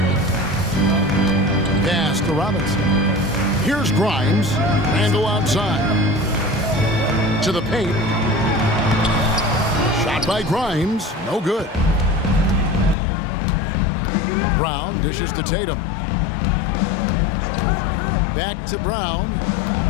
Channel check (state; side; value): drops out; right; at 13.0 s